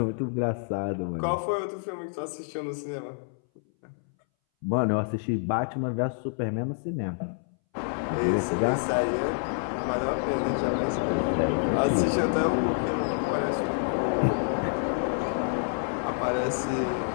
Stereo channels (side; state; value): right; silent; 59 dB below the other